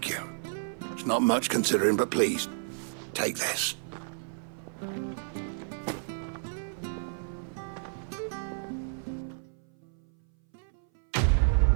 you. It's not much considering, but please, take this.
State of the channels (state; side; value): silent; left; 57 dB below the other